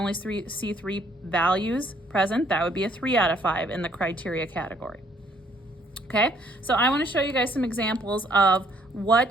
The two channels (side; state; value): both; normal; correlation 0.65